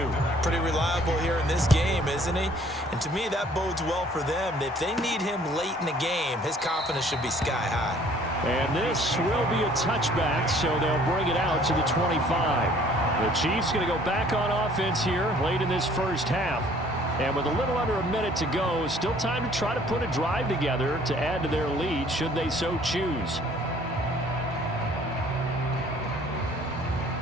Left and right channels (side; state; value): both; normal; correlation 0.57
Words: Pretty reliable here in this game, isn't he? And to me, that bodes well for them. If they need him late in the game, his confidence should be sky high. And this will be a touchback, so they'll bring it out to the 25. The Chiefs going to go back on offense here late in this first half. And with a little under a minute to go, still time to try to put a drive together to add to their lead should they so choose.